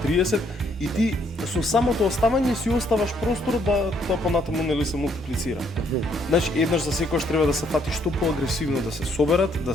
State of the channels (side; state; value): both; normal; correlation 0.69